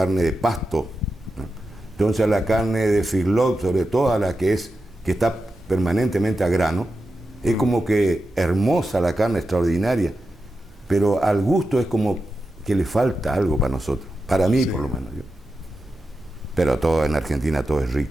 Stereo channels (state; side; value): normal; both; correlation 0.90